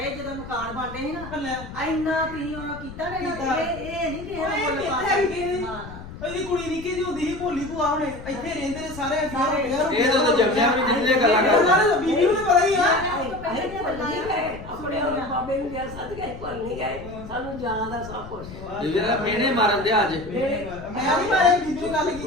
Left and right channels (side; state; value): left; noise; rumble, 14 dB below the sound